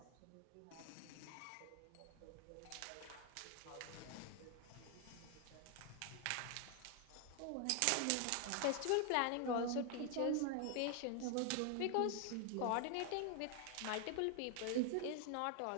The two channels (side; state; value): both; different; correlation 0.00